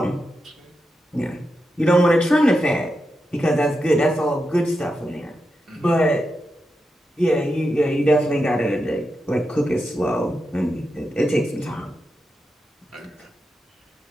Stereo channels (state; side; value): normal; both; correlation 0.88